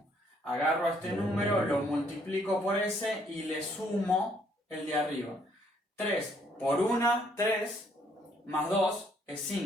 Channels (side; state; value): both; normal; correlation 0.67